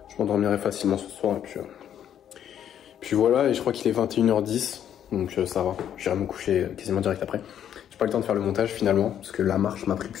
Je m'endormirai facilement ce soir, et puis voilà, et je crois qu'il est 21h10, donc ça va. J'irai me coucher quasiment direct après. J'ai pas le temps de faire le montage finalement, parce que la marche m'a pris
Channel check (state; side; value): quieter; right; 9.8 dB